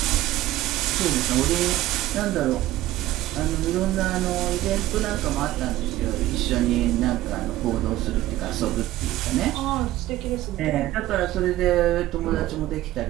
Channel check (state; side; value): quieter; left; 15.4 dB